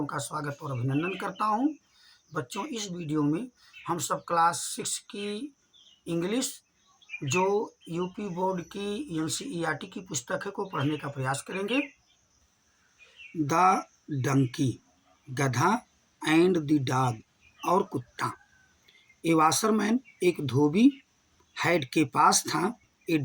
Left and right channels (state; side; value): identical; both; correlation 1.00